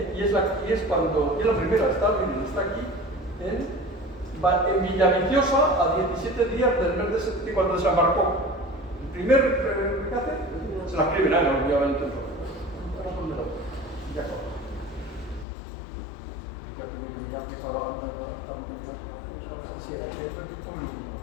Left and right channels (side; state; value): right; drops out; at 15.5 s